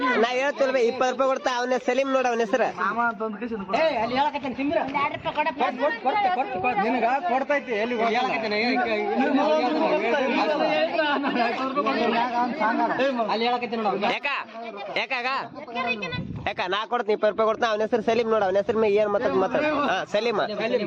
ನಾ ಹೇಳ್ತಿಲ್ವ 20 ರೂಪಾಯಿ ಕೊಡ್ತಾ. ಅವನ ಸಲೀಮ್ ನೋಡ, ಅವನ ಹೆಸರು ಕೊಡ್ತೈತಿ. ಯಾಕ ನಾ ಕೊಡ್ತೀನಿ 20 ರೂಪಾಯಿ ಕೊಡ್ತಾ. ಅವನ ಹೆಸರು ಸಲೀಮ್ ನೋಡ, ಅವನ ಹೆಸರು ಏನ್ ಮಾತಾಡ. ಹಾ ಸಲೀಮ.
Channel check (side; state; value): both; identical; correlation 1.00